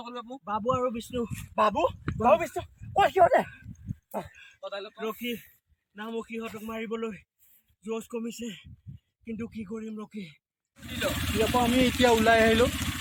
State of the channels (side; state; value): both; identical; correlation 1.00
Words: বাবু আৰু বিষ্ণু, বাবু বিষ্ণু সিহঁতে ৰখি নামো সিহঁতক মাৰিবলৈ জোচ কমিছে, কিন্তু কি কৰিম ৰখি। ইয়াৰ পৰা আমি এতিয়া ওলাই আহিলোঁ।